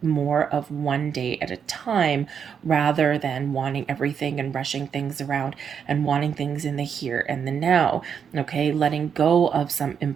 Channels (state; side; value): quieter; left; 7.3 dB